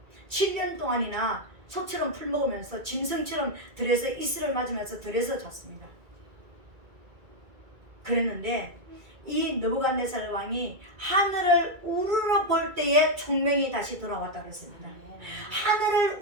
7년 동안이나 소처럼 풀 먹으면서 짐승처럼 들에서 이슬을 맞으면서 들에서 잤습니다. 그랬는데 이 느부갓네살 왕이 하늘을 우러러 볼 때에 총명이 다시 돌아왔다 그랬습니다. 하늘을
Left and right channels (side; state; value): left; late; 2.3 ms